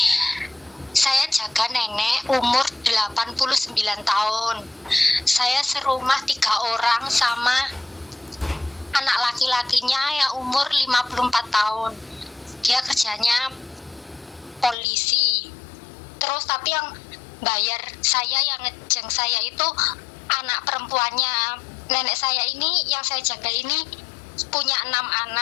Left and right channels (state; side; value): drops out; right; at 14.8 s